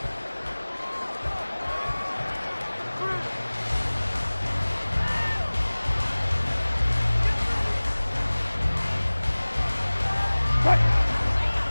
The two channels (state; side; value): inverted; both; correlation -1.00